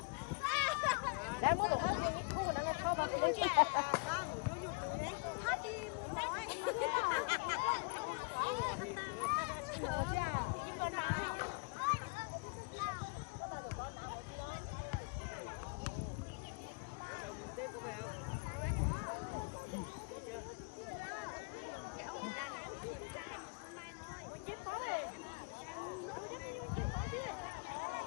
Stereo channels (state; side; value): quieter; right; 32.7 dB